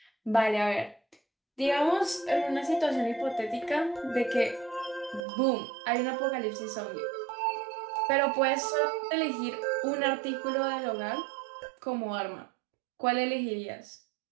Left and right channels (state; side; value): drops out; left; at 5.2 s